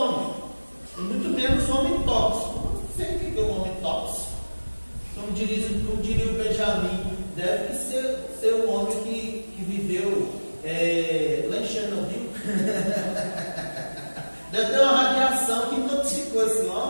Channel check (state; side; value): inverted; both; correlation -1.00